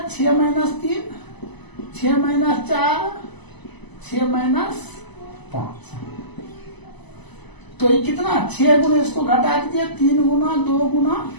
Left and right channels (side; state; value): right; late; 0.99 ms